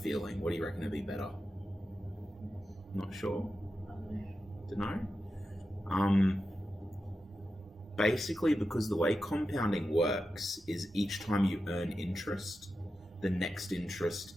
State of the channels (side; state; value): both; normal; correlation 0.90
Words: What do you reckon would be better? Not sure. Don't know. Basically, because the way compounding works is each time you earn interest, the next interest